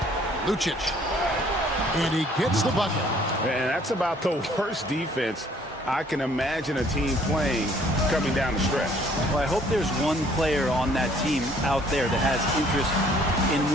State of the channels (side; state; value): both; normal; correlation 0.60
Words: Lucic. And he gets the bucket. And that's about the worst defense I can imagine a team playing coming down the stretch. Well, I hope there's one player on that team out there that has interest in